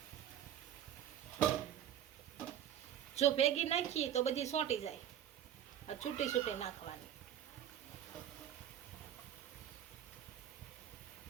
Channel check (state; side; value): quieter; left; 10.4 dB